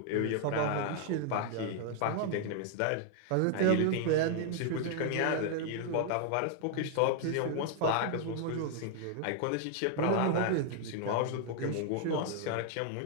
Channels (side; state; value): both; different; correlation 0.00